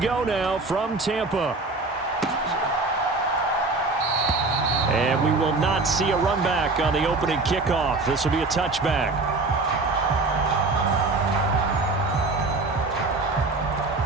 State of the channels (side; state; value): left; quieter; 3.5 dB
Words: now from Tampa. And we will not see a run back on the opening kickoff. This will be a touchback.